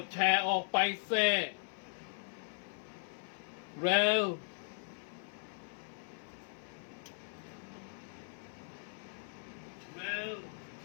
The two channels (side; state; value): right; silent; 52 dB below the other